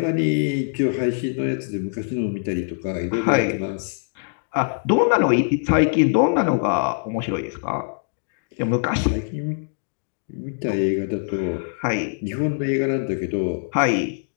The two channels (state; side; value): silent; right; digital silence